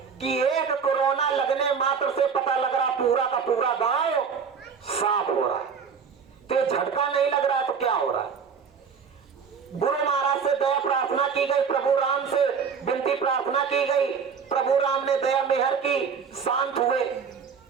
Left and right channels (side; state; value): left; quieter; 6.2 dB